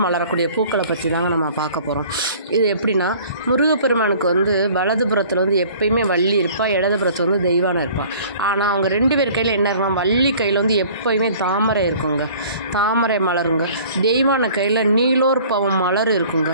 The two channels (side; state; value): both; inverted; correlation -0.50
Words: மலரக்கூடிய பூக்களை பற்றி தாங்க நம்ம பார்க்க போகிறோம். இது எப்படின்னா, முருகப்பெருமானுக்கு வலதுபுறத்தில் எப்பயுமே வள்ளி இருப்பாள், இடதுபுறத்தில் தெய்வானை இருப்பாள். ஆனால் அவங்க ரெண்டு பேர் கையில் என்ன இருக்கும், வள்ளி கையில் எப்பயுமே தாமரை இருக்குங்க, தாமரை மலருங்க. தெய்வான கையில் நீலோர் பவம் மலர் இருக்குங்க.